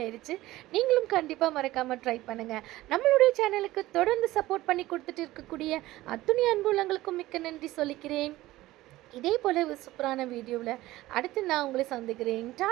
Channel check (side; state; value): left; quieter; 17.1 dB